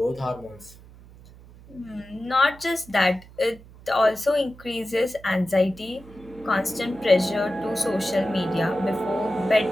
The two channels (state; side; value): noise; right; hum, 21 dB below the sound